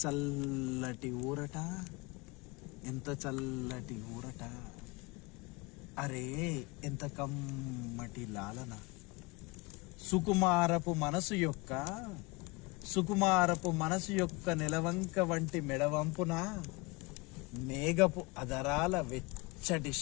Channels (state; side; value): quieter; right; 25.9 dB